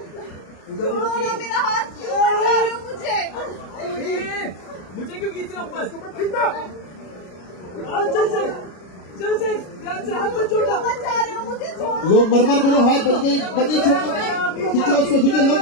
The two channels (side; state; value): right; late; 33 ms